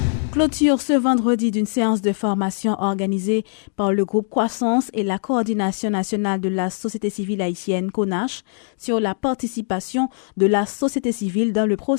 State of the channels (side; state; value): right; silent; digital silence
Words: Clôture ce vendredi d'une séance de formation organisée par le groupe Croissance et la Coordination nationale de la société civile haïtienne CONACH sur la participation de la société civile dans le